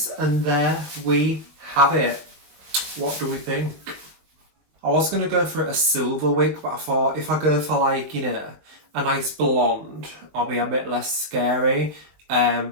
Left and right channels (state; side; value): late; left; 20 ms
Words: and there we have it. What do we think? I was going to go for a silver wig, but I thought if I go for like, you know, a nice blonde, I'll be a bit less scary.